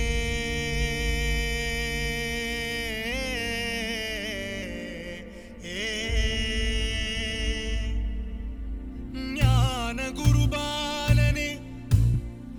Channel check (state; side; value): identical; both; correlation 1.00